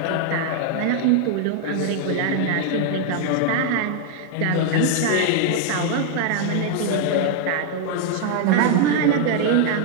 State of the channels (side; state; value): both; different; correlation 0.00